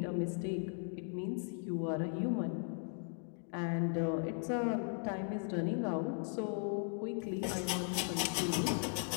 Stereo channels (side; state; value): right; silent; 53 dB below the other